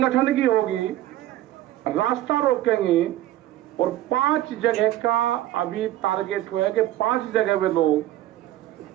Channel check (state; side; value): quieter; left; 14.0 dB